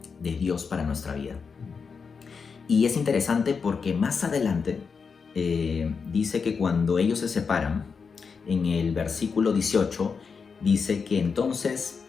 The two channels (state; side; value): quieter; right; 5.5 dB